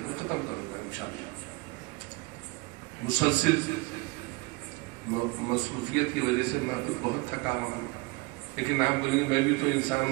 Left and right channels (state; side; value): quieter; left; 25.8 dB